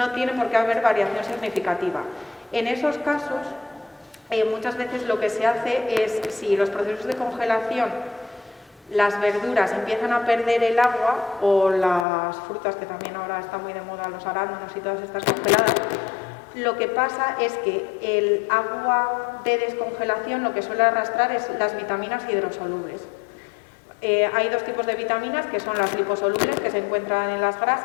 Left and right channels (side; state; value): right; drops out; at 12.1 s